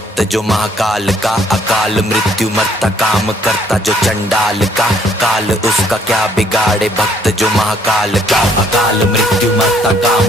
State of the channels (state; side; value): normal; both; correlation 0.64